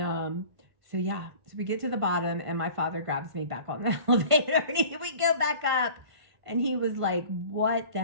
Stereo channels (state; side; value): late; left; 1.5 ms